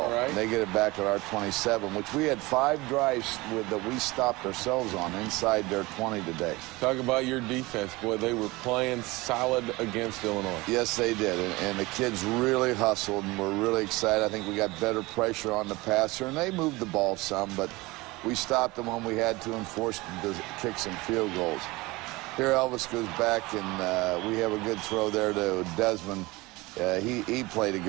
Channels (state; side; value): quieter; left; 22.1 dB